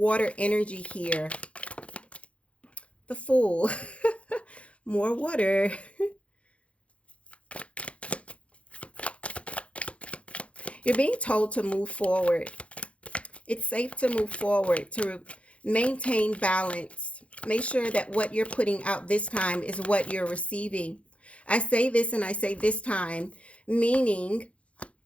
energy here. The Fool. More water. You're being told to move forward. It's safe to move forward, to maintain balance. Make sure that what you're putting out this time is what you're receiving. I say this and I say this time, meaning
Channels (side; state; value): right; late; 0.062 ms